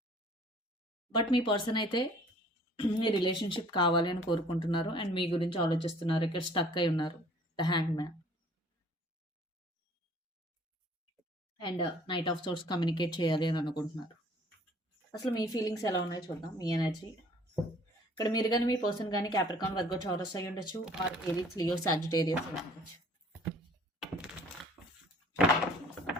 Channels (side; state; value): both; normal; correlation 0.54